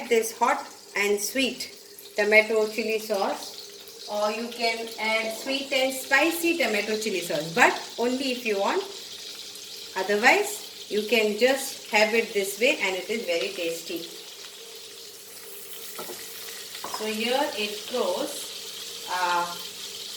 this hot and sweet tomato chili sauce, or you can add sweet and spicy tomato chili sauce, but only if you want. Otherwise you can just have it this way and it is very tasty. So here it goes.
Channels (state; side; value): identical; both; correlation 1.00